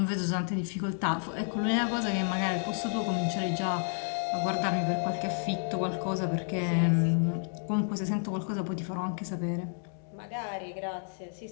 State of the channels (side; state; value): right; silent; 57 dB below the other